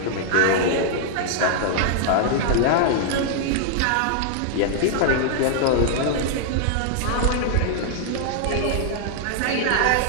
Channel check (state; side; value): different; both; correlation -0.01